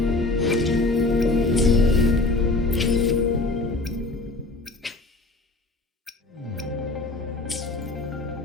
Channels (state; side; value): quieter; right; 3.1 dB